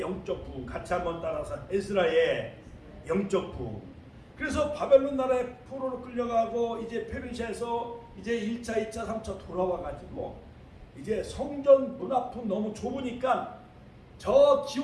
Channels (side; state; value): both; identical; correlation 1.00